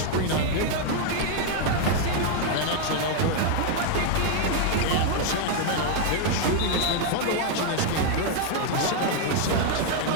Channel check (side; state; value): both; different; correlation 0.00